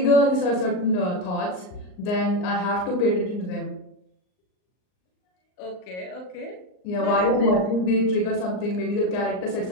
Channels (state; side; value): late; right; 39 ms